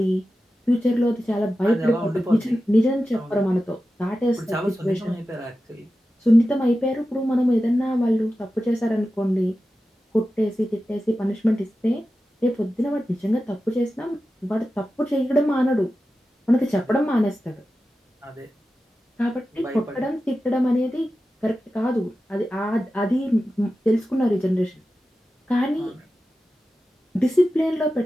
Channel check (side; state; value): both; normal; correlation 0.93